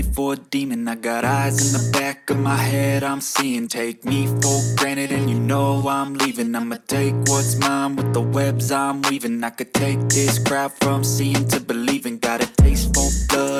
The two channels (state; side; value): identical; both; correlation 1.00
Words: for a demon. I got eyes in the back of my head, I'm seeing. Take me for granted and you know I'm leaving. I'ma take what's mine with the webs I'm weaving. I could take this crowd from seeing to believing. Got a taste for